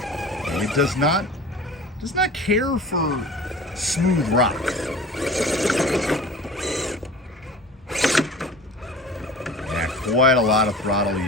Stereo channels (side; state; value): both; normal; correlation 0.40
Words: And it does not care for smooth rock. Yeah, quite a lot of throttle